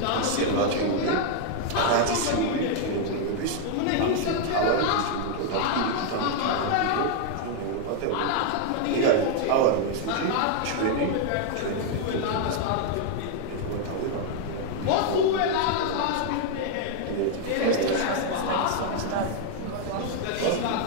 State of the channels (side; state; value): both; different; correlation 0.00